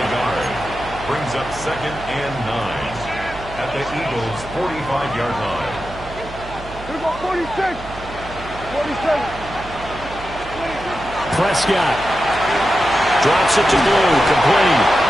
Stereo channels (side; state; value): right; noise; hum, 14 dB below the sound